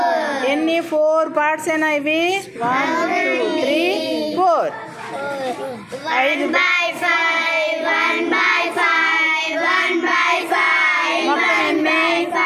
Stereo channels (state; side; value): identical; both; correlation 1.00